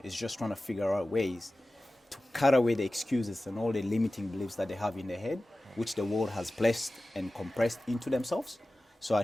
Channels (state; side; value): normal; both; correlation 0.96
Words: it's just trying to figure out ways to cut away the excuses and all the limiting beliefs that they have in their head, which the world has placed and compressed into themselves. So I